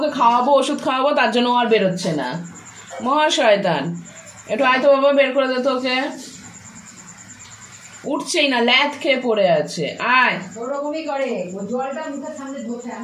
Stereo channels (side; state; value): both; identical; correlation 1.00